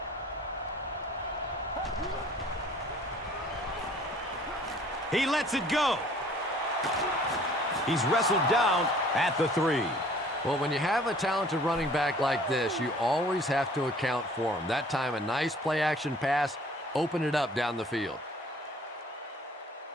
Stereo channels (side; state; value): both; normal; correlation 0.53